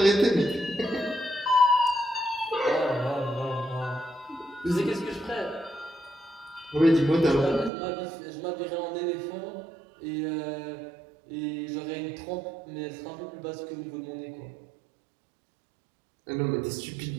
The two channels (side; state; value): left; drops out; at 7.7 s